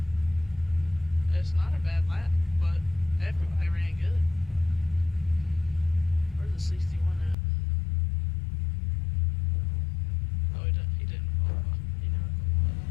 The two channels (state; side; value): drops out; right; at 7.4 s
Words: It's not a bad lap, but everybody ran good. Where's the 61 at? Oh, he didn't qualify. He never